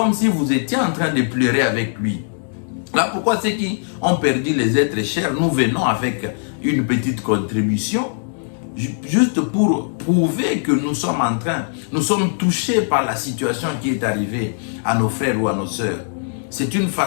si vous étiez en train de pleurer avec lui. Là, pourquoi ceux qui ont perdu les êtres chers, nous venons avec une petite contribution, juste pour prouver que nous sommes touchés par la situation qui est arrivée à nos frères ou à nos sœurs. C'est une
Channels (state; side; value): silent; right; digital silence